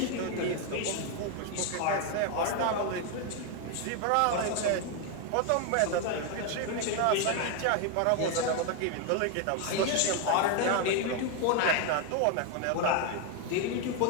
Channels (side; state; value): both; different; correlation 0.01